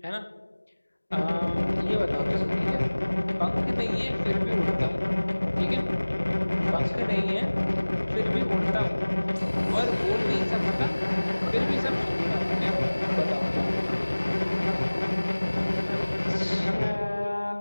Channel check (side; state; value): both; inverted; correlation -1.00